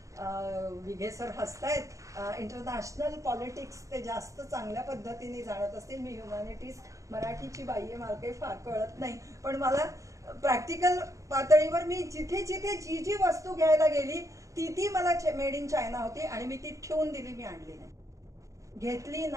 विघे सर हसतायत इंटरनॅशनल पॉलिटिक्स ते जास्त चांगल्या पद्धतीने जाणत असतील. मी ह्युमॅनिटीज मराठीची बाई आहे, मला काही फार कळत नाही, पण मला प्रॅक्टिकल पातळीवर मी जिथे जिथे जी जी वस्तू घ्यायला गेली ती ती मला मेड इन चायना होती आणि मी ती ठेवून दिली, मी आणली नाही, घेतली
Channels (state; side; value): late; left; 0.15 ms